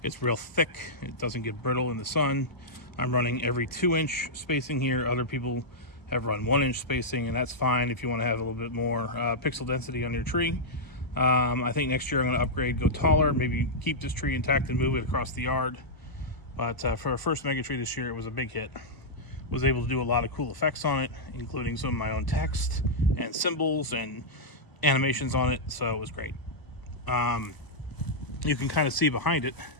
It's real thick. It doesn't get brittle in the sun. I'm running every 2-inch spacing here. Other people have run 1-inch spacing, and that's fine if you want to have a little bit more pixel density on your tree. I think next year I'm going to upgrade, go taller, maybe keep this tree intact and move it across the yard. But for our first Megatree this year, it was a big hit. Was able to do a lot of cool effects on it, including some of my own text and symbols and animations on it, so it was great. You can kind of see behind it.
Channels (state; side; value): late; right; 1.0 ms